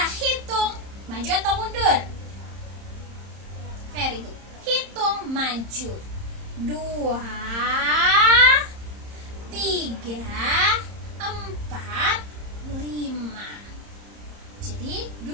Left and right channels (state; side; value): late; left; 30 ms